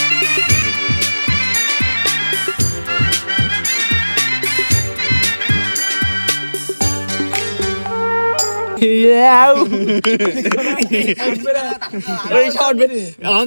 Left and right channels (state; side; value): inverted; both; correlation -1.00